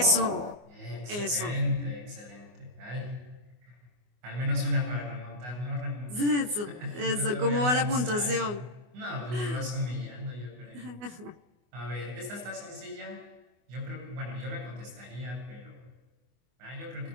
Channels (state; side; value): late; left; 24 ms